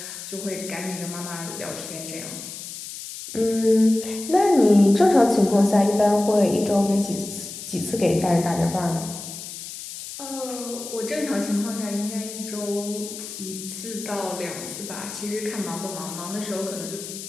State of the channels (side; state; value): left; noise; hiss, 10 dB below the sound